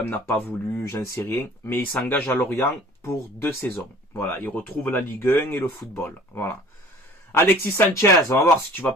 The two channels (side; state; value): both; normal; correlation 0.48